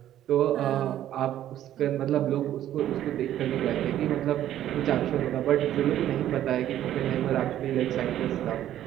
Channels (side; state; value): left; quieter; 12.0 dB